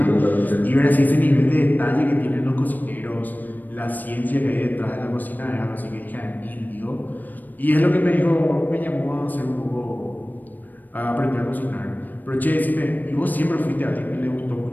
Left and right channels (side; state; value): right; late; 0.086 ms